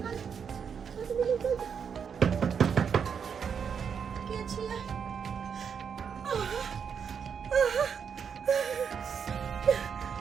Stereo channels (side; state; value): left; quieter; 7.0 dB